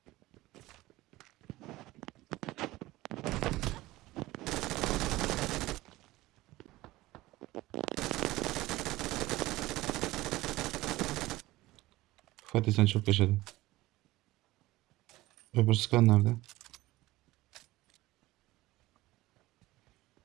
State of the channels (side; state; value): left; quieter; 18.2 dB